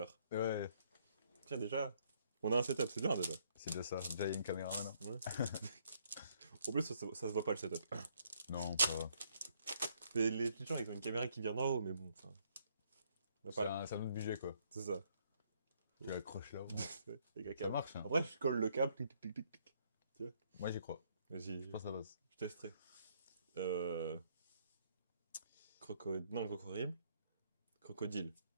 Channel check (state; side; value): inverted; both; correlation -0.69